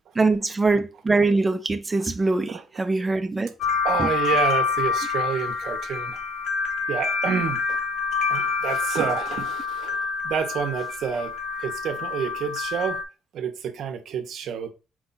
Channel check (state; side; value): normal; both; correlation 0.58